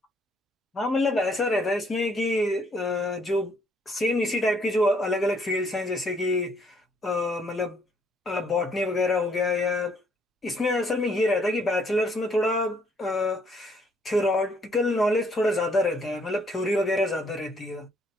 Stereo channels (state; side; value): normal; both; correlation 0.67